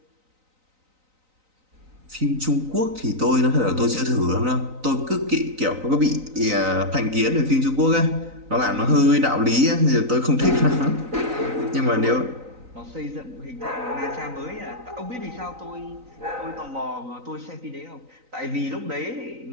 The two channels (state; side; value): late; left; 3.9 ms